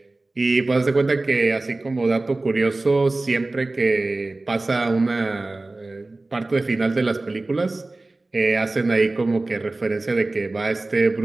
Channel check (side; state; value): left; quieter; 3.0 dB